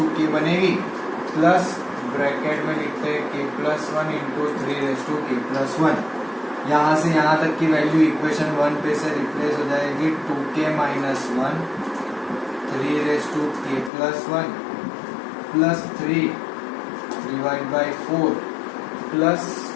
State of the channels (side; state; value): right; drops out; at 13.9 s